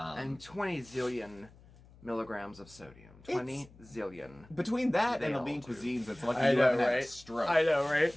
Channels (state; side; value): noise; left; hum, 24 dB below the sound